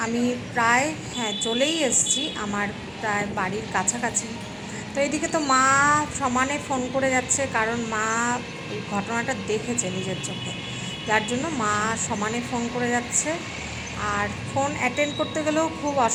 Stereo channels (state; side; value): identical; both; correlation 1.00